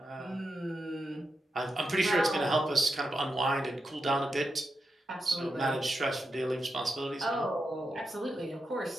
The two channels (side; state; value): both; normal; correlation 0.86